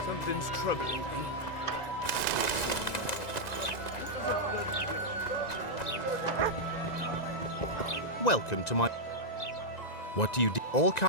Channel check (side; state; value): right; late; 1.9 ms